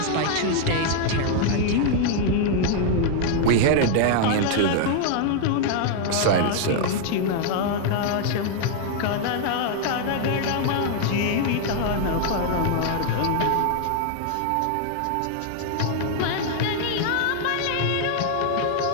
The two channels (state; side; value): different; both; correlation 0.00